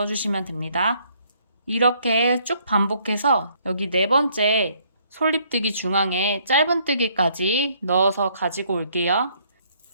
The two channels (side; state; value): both; inverted; correlation -0.66